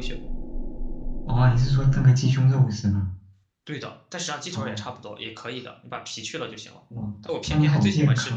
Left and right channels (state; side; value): identical; both; correlation 1.00